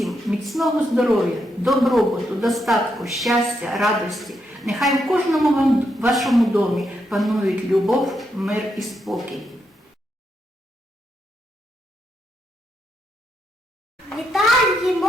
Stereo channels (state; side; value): normal; both; correlation 0.81